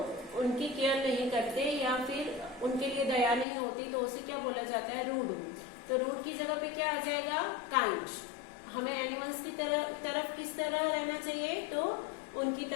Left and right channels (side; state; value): right; drops out; at 3.5 s